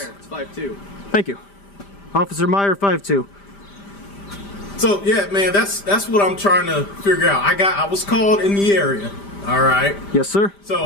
Meyer. It's 5'2". Thank you. Officer Meyer, 5'2". So yeah, man, that's what I'm trying to figure out. I was called in the area. All right. Yes, sir. So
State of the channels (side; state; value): right; late; 5.0 ms